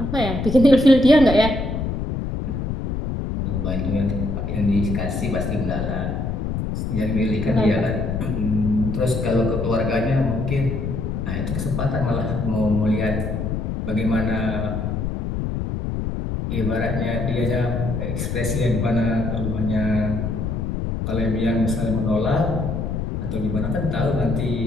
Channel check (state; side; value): noise; left; rumble, 2 dB below the sound